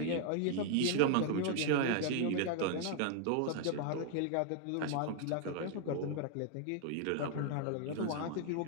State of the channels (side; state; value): both; different; correlation 0.00